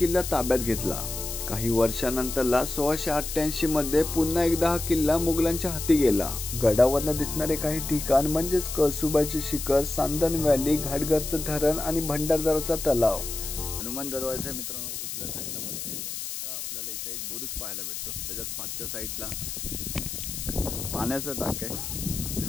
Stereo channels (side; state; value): left; noise; hiss, 6 dB below the sound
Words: ताब्यात घेतला. काही वर्षानंतरला 1688 मध्ये पुन्हा एकदा हा किल्ला मुघलांच्या हाती गेला. गडावरनं दिसणारे काही ठिकाण म्हणजेच कळसुबाईचे शिखर, सांदन व्हॅली, घाटघरचं धरण आणि भंडारदराचा तलाव. हनुमान दरवाजा मित्रांनो उजव्या साईडला वरती येतो. तर आपल्याला इथे एक बुरुज पाहायला भेटतो. त्याच्यात पाठच्या साईडला पाण्याचं टाक आहे